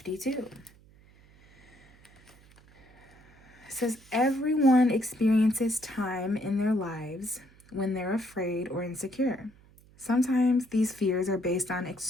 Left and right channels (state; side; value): noise; right; hum, 27 dB below the sound